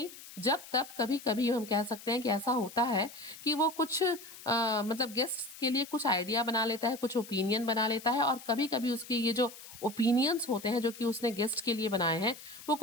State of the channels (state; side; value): noise; left; hiss, 16 dB below the sound